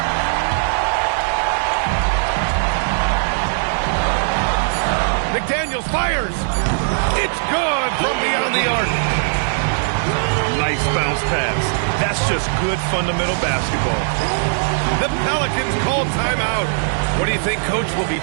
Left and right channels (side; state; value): left; silent; 60 dB below the other